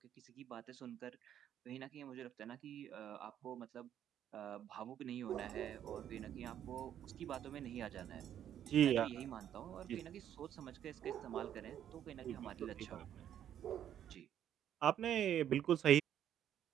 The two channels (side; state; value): left; quieter; 10.3 dB